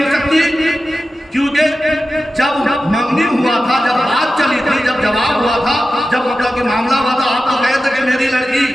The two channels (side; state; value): both; normal; correlation 0.93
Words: सकती? क्योंकि जब मंगनी हुआ था, जब बात चली थी, जब जवाब हुआ था, जब मतलब कि मामला हुआ था, आप तो कहे थे कि मेरी लड़की